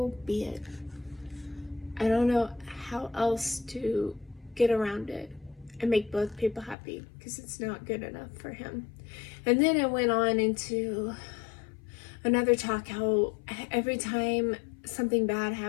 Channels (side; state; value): right; drops out; at 6.8 s